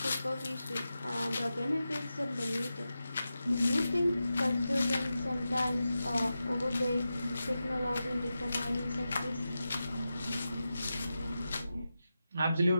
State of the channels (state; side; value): inverted; both; correlation -0.92